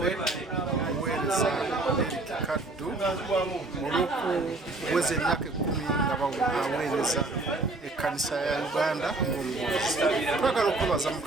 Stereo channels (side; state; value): left; quieter; 3.2 dB